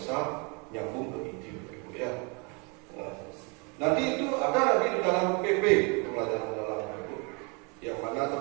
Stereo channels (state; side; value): quieter; left; 32.5 dB